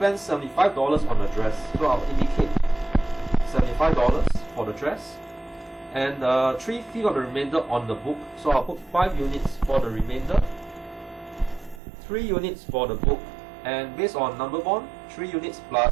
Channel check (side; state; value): left; drops out; at 11.8 s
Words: $75 on the dress, so I'll indicate $75 for the dress. And 3/5 of the remainder on the book, so I'll put 5 units for the remainder, 3 units for the book, and based on number bond, 3 units